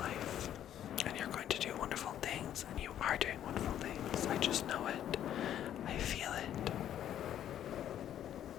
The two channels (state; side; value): quieter; right; 10.8 dB